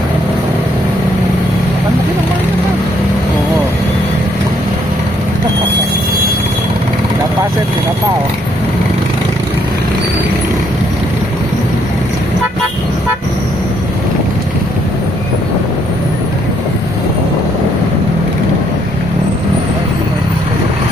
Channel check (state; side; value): normal; both; correlation 0.70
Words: Ang laki ng bayan na. Oo. Napaset, pinapao.